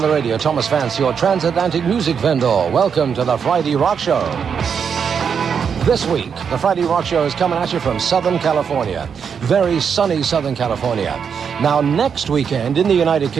the Radio. Thomas Vance, your transatlantic music vendor. Welcome to the Friday Rock Show. This week, the Friday Rock Show is coming at you from Southern California. Very sunny Southern California. Now, next weekend in the United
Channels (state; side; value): quieter; left; 6.9 dB